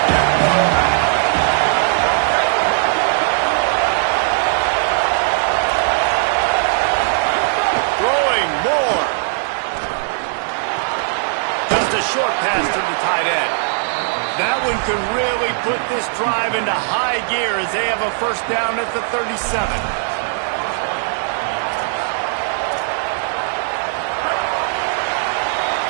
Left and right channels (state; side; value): silent; left; 67 dB below the other